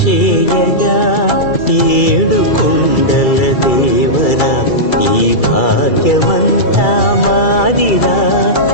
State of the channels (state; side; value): late; right; 2.3 ms